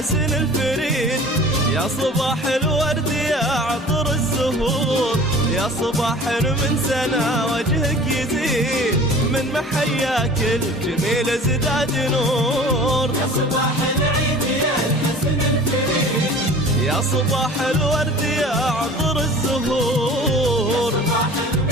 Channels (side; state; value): both; normal; correlation 0.44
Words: الفريد، يا صباح الورد يا عطر الزهور، يا صباح من سنة وجهك يزيد، من محياك الجميل ازداد نور. يا صباح العيد يا الحسن الفريد، يا صباح الورد يا عطر الزهور، صباح